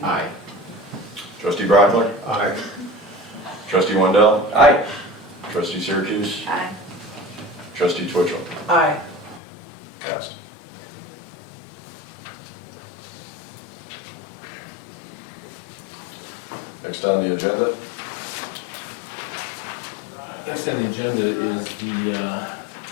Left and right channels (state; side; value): drops out; right; at 9.4 s